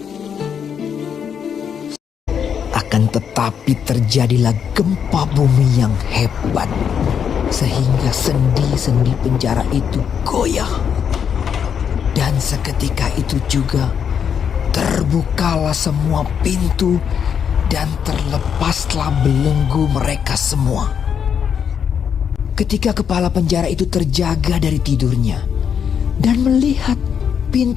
Akan tetapi terjadilah gempa bumi yang hebat, sehingga sendi-sendi penjara itu goyah. Dan seketika itu juga terbukalah semua pintu dan terlepaslah belenggu mereka semua. Ketika kepala penjara itu terjaga dari tidurnya dan melihat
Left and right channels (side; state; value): right; quieter; 7.6 dB